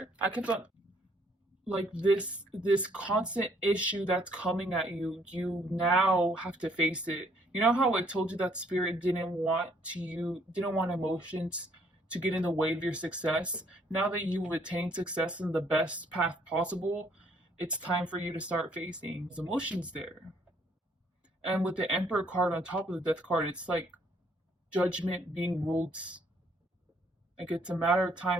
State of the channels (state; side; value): normal; both; correlation 0.65